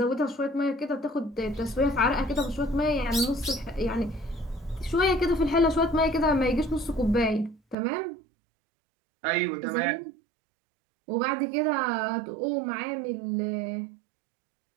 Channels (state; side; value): drops out; left; at 7.8 s